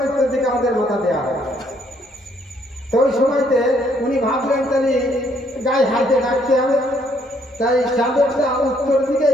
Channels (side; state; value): both; normal; correlation 0.68